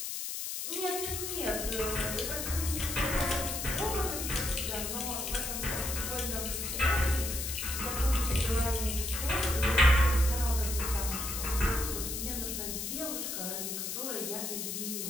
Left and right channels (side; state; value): left; noise; hiss, 4 dB below the sound